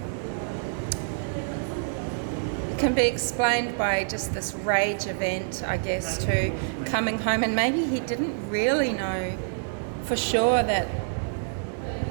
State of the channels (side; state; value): left; silent; 60 dB below the other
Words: It can be explained by just this rage event, I guess, too, coming home, and maybe he didn't really know for sure that